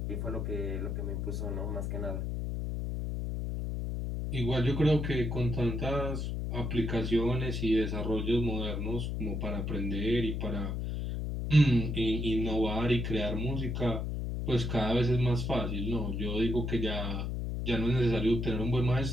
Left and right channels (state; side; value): noise; left; hum, 2 dB below the sound